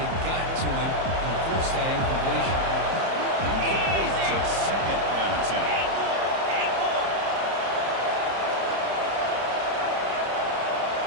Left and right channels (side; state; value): left; late; 30 ms